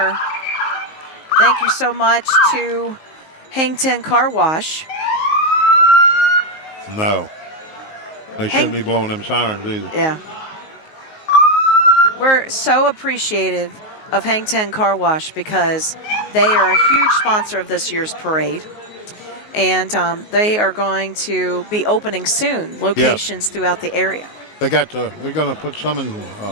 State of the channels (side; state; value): right; late; 19 ms